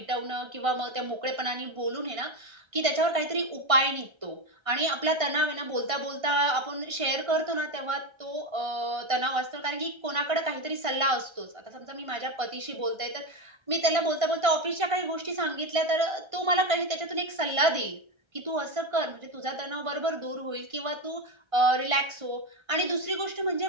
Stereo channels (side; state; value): left; late; 1.5 ms